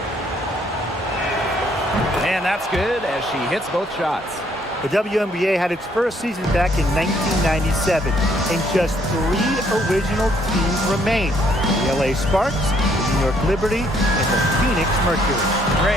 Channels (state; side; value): normal; both; correlation 0.67